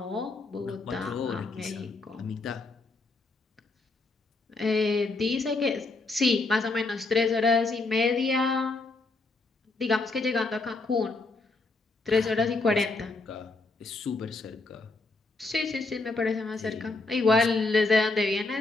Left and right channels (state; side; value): quieter; right; 3.5 dB